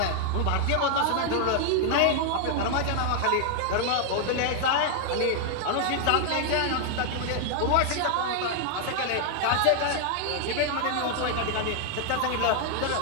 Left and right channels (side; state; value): both; different; correlation 0.00